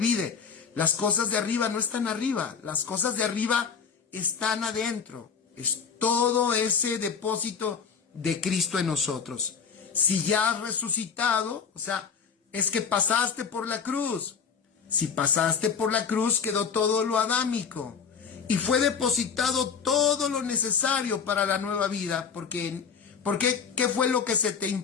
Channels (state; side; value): quieter; right; 6.3 dB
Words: las cosas de arriba no están arriba, las cosas de arriba están adentro. Es todo ese depósito de Cristo en nosotros. Si ya has resucitado, o sea, es que pasaste por la cruz. Si pasaste por la cruz, quedó todo lo adámico y fue depositado todo lo necesario para la nueva vida. Porque ¿qué fue lo que se te